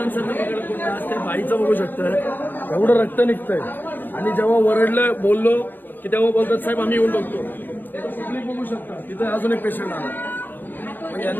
बघायला कोण. आज त्या बाईचं बघू शकताय एवढं रक्त निघतंय. आणि जेव्हा वरडलं बोललो की तेव्हा बोलतात साहेब आम्ही येऊन बघतो. पब्लिक बघू शकता तिथं अजून एक पेशंट आला. मग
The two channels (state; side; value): late; right; 0.093 ms